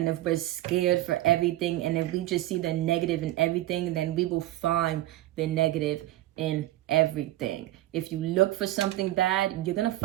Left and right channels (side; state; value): left; quieter; 15.6 dB